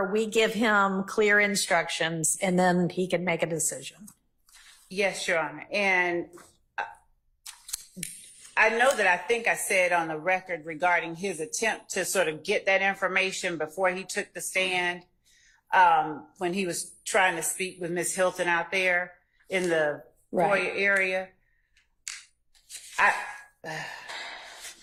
we give him clear instructions and then he can make a decision. Yes, Your Honor. And I know that I think I said on the record regarding his attempt to sort of get that information before he took the stand, when he was trying to speak with Ms. Hilton out there in the foyer area.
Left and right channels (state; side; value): identical; both; correlation 1.00